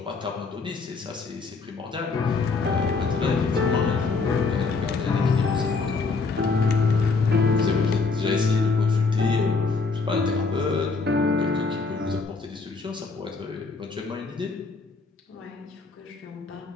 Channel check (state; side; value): quieter; right; 4.3 dB